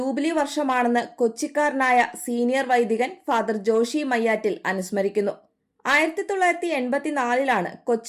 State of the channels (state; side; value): identical; both; correlation 1.00